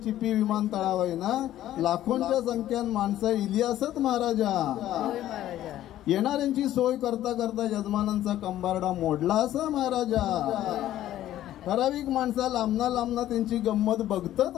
चिपी विमानतळावर ना लाखोंच्या संख्येन माणसं इली असत महाराजा. येणाऱ्यांची सोय करता करता यजमानांचा कंबारडा मोडला असा महाराजा. ठराविक माणसा लांबना त्यांची गंमत बघतात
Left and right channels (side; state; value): right; quieter; 13.1 dB